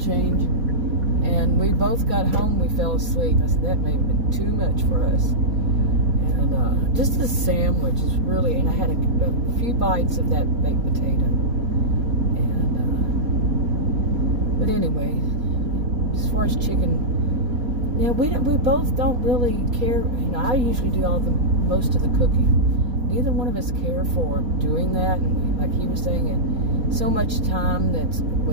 And we both got home. We fell asleep. I said that may have been too much for us. And just the sandwich is really, and I had a few bites of that baked potato. But anyway, as far as chicken, yeah, we both don't really care. I usually do most of the cooking. Neither one of us care for doing that, and like he was saying, so much time that's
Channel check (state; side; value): late; left; 4.2 ms